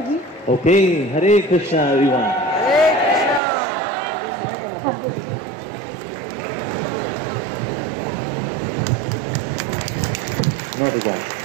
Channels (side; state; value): left; drops out; at 3.4 s